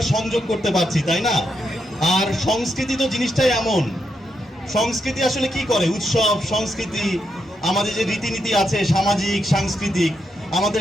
সংযোগ করতে পারছি, তাই না? আর সংস্কৃতি তো জিনিসটাই এমন, সংস্কৃতি আসলে কি করে, উৎসব সংস্কৃতি আমাদের যে রীতিনীতি আছে সামাজিক সাংস্কৃতিক,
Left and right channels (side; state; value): both; normal; correlation 0.82